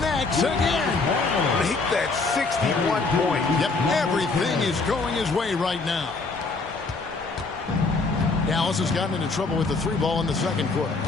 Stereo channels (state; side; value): quieter; right; 3.9 dB